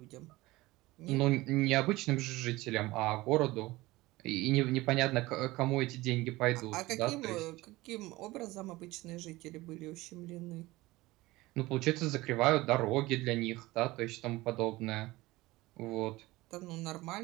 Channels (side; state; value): left; quieter; 19.6 dB